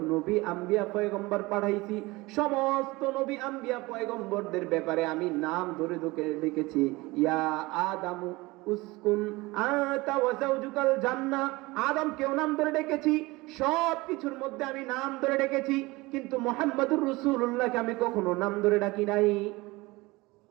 নবী আম্বিয়া পয়গম্বর পাঠাইছি সমস্ত নবী আম্বিয়া পয়গম্বরদের ব্যাপারে আমি নাম ধরে ডেকেছি। ইয়া আদামু উসকুন আতা ওয়া যাওজুকাল জান্নাহ, আদমকেও নাম ধরে ডেকেছি, সব কিছুর মধ্যে আমি নাম ধরে ডেকেছি। কিন্তু মুহাম্মদুর রাসূলুল্লাহকে আমি কখনো নাম ধরে ডাকি নাই।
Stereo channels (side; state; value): left; quieter; 22.0 dB